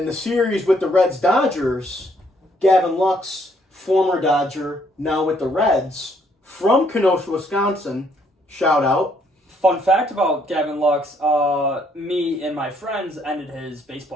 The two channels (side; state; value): both; normal; correlation 0.68